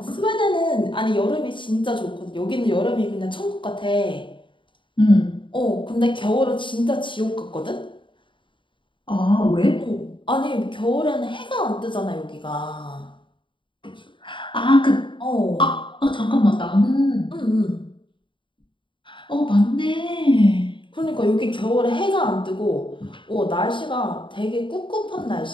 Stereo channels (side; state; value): right; late; 0.24 ms